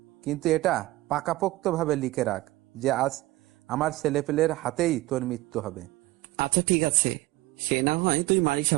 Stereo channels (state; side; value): quieter; left; 18.7 dB